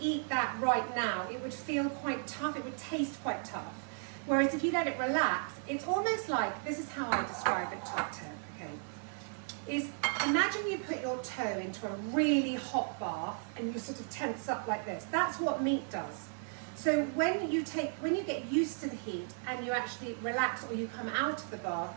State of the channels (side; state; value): left; silent; 54 dB below the other